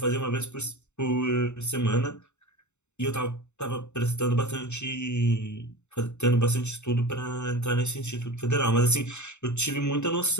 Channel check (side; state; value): right; late; 0.83 ms